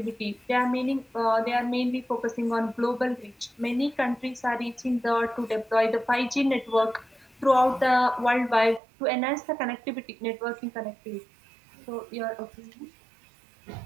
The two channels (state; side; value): drops out; left; at 8.8 s